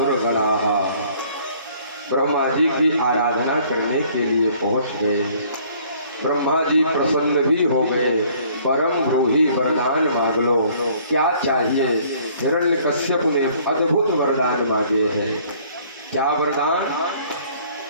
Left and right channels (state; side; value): inverted; both; correlation -0.58